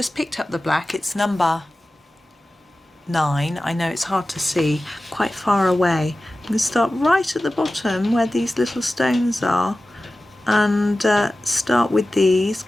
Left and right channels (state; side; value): normal; both; correlation 0.96